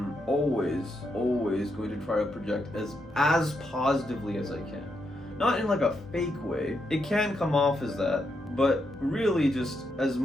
always going to try to project as positively as I can. Not in like a fake way. It can come off as that, but really just as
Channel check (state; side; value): normal; both; correlation 0.81